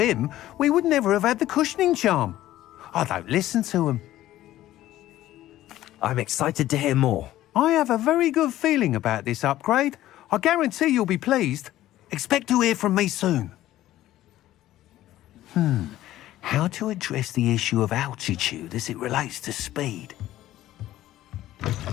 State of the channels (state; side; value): quieter; right; 14.3 dB